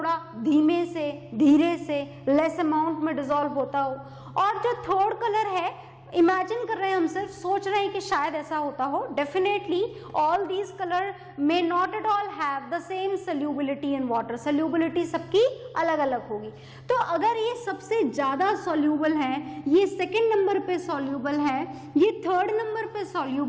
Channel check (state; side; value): identical; both; correlation 1.00